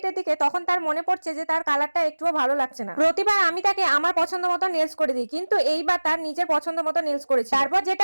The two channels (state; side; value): inverted; both; correlation -1.00